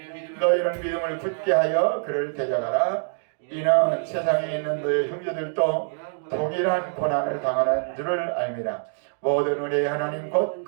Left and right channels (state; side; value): silent; left; digital silence